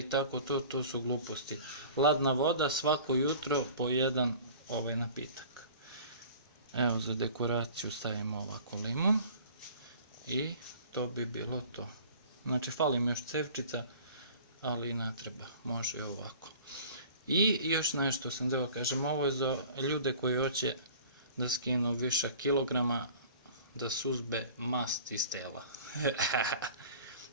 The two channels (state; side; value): inverted; both; correlation -0.45